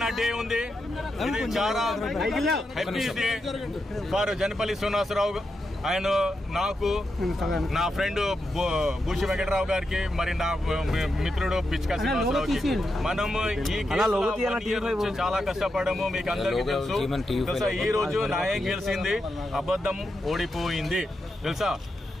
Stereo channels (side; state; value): both; normal; correlation 0.86